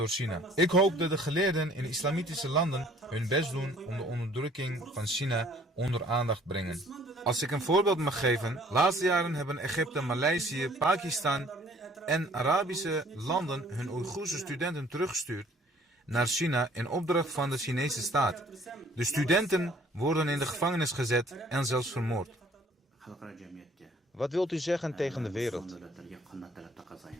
China. Ik hoop dat de geleerden in islamitische landen hun best doen om de onderdrukking van China onder aandacht brengen. Als ik een voorbeeld mag geven, laatste jaren hebben Egypte, Maleisië, Pakistan en Arabische landen hun Oeigoerse studenten teruggestuurd naar China in opdracht van de Chinese staat. De studenten worden in de gevangenis gezet en zelfs vermoord. Wat wilt u zeggen tegen de wereld?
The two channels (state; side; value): normal; both; correlation 0.56